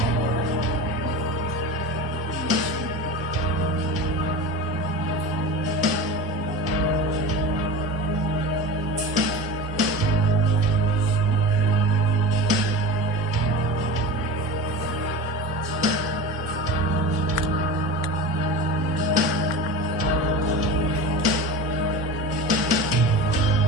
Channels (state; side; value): normal; both; correlation 0.31